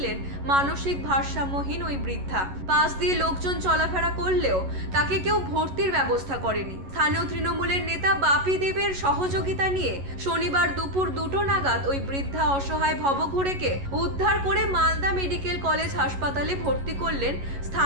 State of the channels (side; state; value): left; late; 11 ms